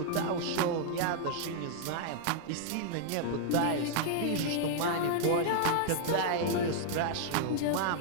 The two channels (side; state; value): both; different; correlation -0.01